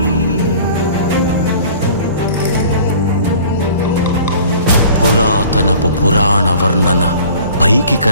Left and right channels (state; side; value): inverted; both; correlation -0.47